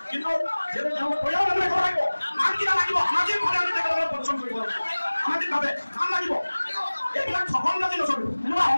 কিন্তু যিহেতু তেওঁলোকে পৰিয়াল মানুহে ক'ব লাগিব নাম কিয় লাগিব সামাজিকভাৱে আমি তেখেতসকলক পৰিশ্ৰম কৰিব লাগিব সামাজিকভাৱে নাম লাগিব এইবিলাক সফল যদি নচলিব এনেকুৱা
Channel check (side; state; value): both; inverted; correlation -1.00